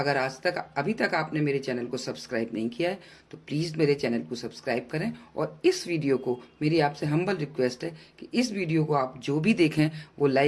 अभी तक आपने मेरे चैनल को सब्सक्राइब नहीं किया है तो प्लीज़ मेरे चैनल को सब्सक्राइब करें। और इस वीडियो को, मेरी आपसे हम्बल रिक्वेस्ट है कि इस वीडियो को आप जो भी देखें वो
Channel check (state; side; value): identical; both; correlation 1.00